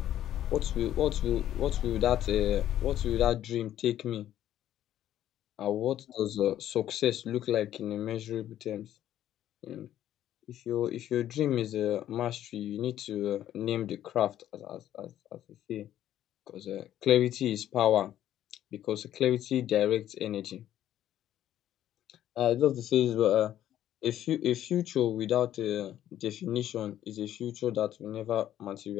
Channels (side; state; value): right; quieter; 11.9 dB